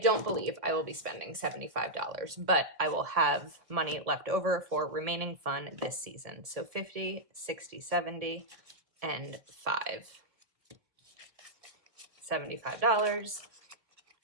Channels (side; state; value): left; late; 1.4 ms